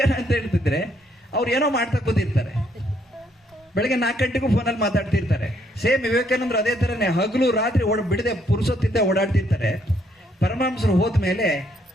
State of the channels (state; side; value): normal; both; correlation 0.71